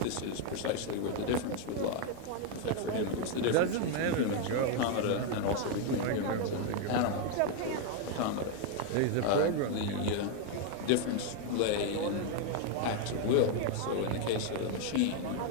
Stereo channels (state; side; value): different; both; correlation 0.01